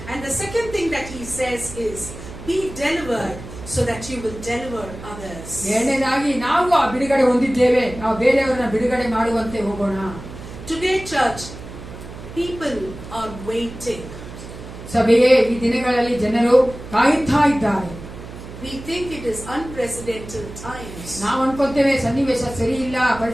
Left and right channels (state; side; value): noise; right; hum, 13 dB below the sound